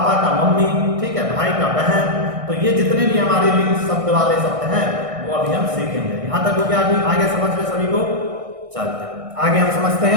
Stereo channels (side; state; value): left; late; 1.6 ms